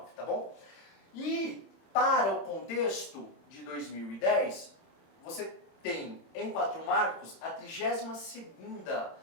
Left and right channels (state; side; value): late; right; 31 ms